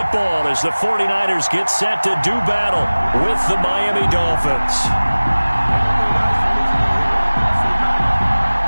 as the 49ers get set to do battle with the Miami Dolphins.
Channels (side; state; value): both; inverted; correlation -1.00